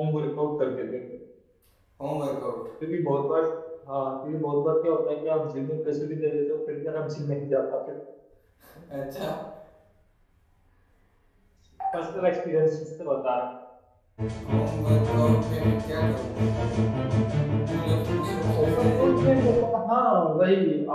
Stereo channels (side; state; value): both; identical; correlation 1.00